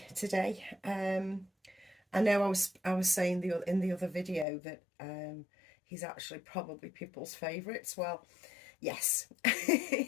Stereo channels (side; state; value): right; drops out; at 4.5 s